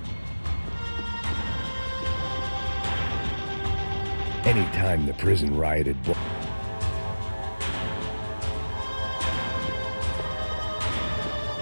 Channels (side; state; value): both; inverted; correlation -1.00